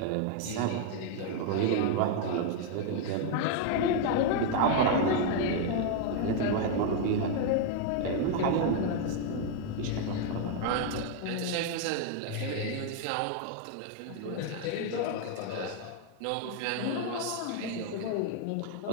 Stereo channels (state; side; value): different; both; correlation 0.01